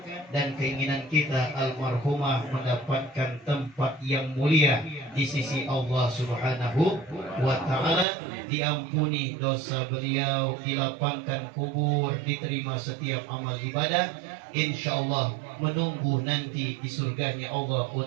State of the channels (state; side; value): drops out; left; at 8.1 s